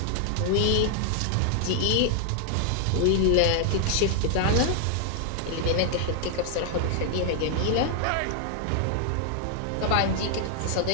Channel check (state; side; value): different; both; correlation 0.00